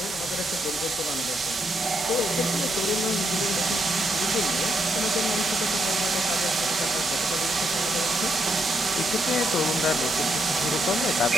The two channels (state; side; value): normal; both; correlation 0.78